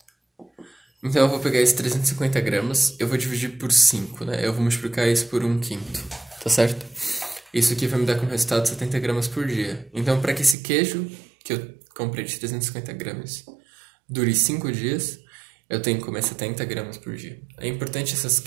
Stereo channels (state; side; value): drops out; left; at 10.6 s